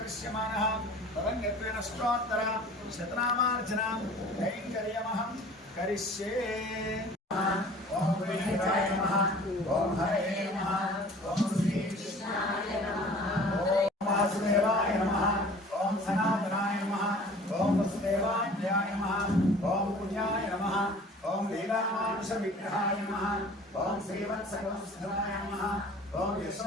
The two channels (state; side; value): normal; both; correlation 0.47